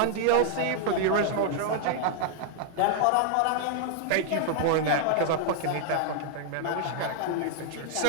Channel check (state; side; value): different; both; correlation 0.00